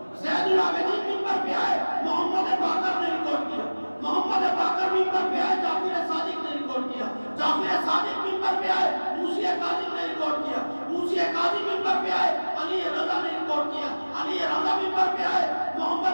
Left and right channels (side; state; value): both; inverted; correlation -1.00